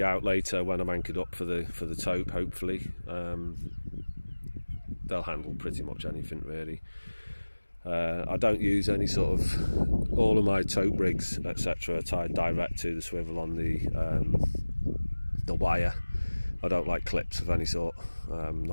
out later when I'm anchored up for the tope. Hopefully, they'll handle pretty much anything really. I don't use any sort of, all of my tope rigs etc. are tied direct to the swivel on the wire. I don't like clips of any sort,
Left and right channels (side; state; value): both; inverted; correlation -1.00